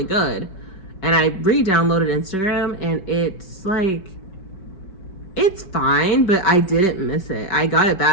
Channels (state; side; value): late; right; 5.2 ms